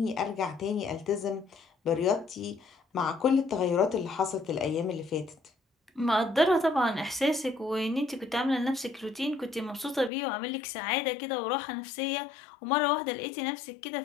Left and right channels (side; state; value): right; drops out; at 10.1 s